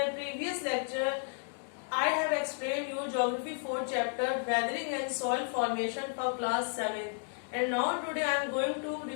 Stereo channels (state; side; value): silent; right; 56 dB below the other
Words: previous lecture, I have explained you Geography 4 chapter Weathering and Soil Formation for class 7. And now today I am going to